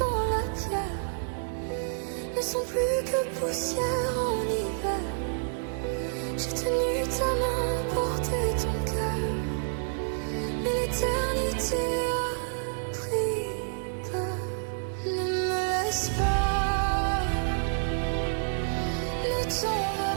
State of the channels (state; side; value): silent; left; digital silence